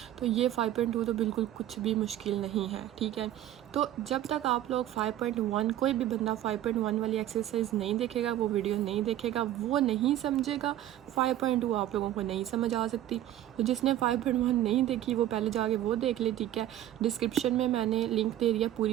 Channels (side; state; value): left; quieter; 12.7 dB